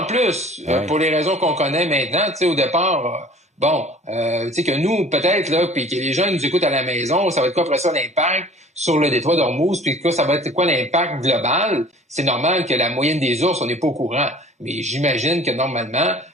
en plus, pour les raisons qu'on connaît maintenant, tu sais, au départ, tu sais que nous, peut-être, là, puis que les gens nous écoutent à la maison, ça va être quoi après ça l'impact sur le détroit d'Ormuz, puis ça va être quoi l'impact global? C'est normal que la moyenne des ours, on n'est pas au courant. Mais j'imagine que normalement,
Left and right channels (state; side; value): normal; both; correlation 0.48